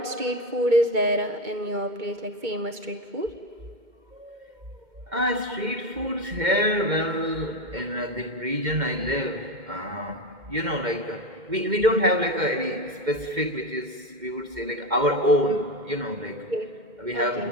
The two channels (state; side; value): late; left; 2.1 ms